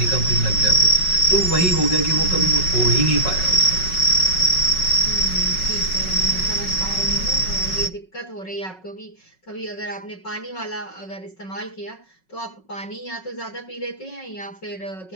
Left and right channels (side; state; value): right; late; 5.4 ms